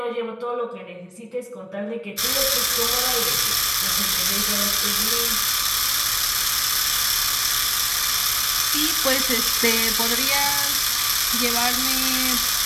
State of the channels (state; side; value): identical; both; correlation 1.00